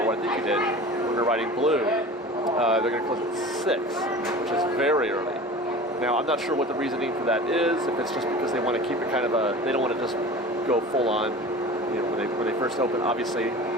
I think you did, when they're riding Blue, they're going to close at 6, which is very early. Now, I'm not sure what the reasoning for that is. If it's just because they want to keep it kind of they don't want to just go full on. You know, when they first open, obviously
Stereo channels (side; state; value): both; normal; correlation 0.37